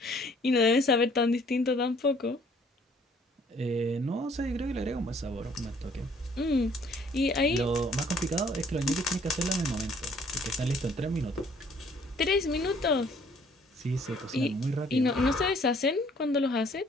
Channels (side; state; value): both; normal; correlation 0.60